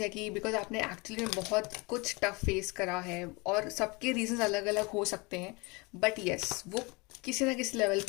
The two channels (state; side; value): quieter; right; 27.0 dB